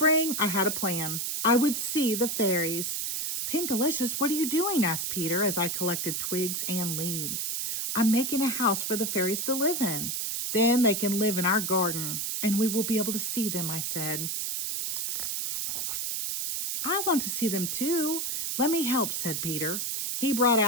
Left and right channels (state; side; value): noise; right; hiss, 1 dB below the sound